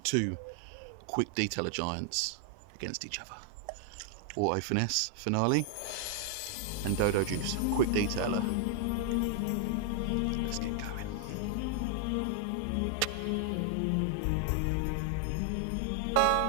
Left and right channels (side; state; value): both; different; correlation 0.00